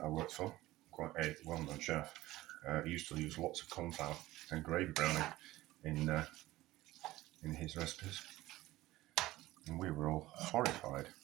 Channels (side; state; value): left; quieter; 17.1 dB